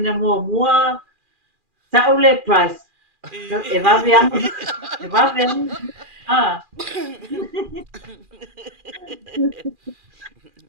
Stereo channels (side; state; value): left; late; 2.4 ms